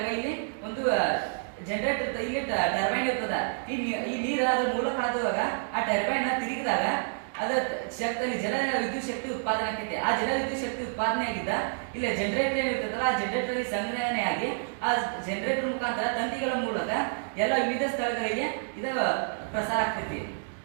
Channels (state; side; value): silent; left; digital silence